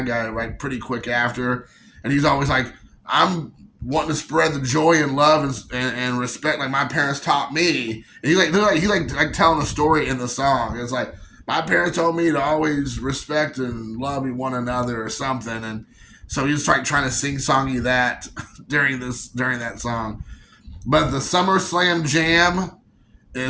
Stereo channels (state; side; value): identical; both; correlation 1.00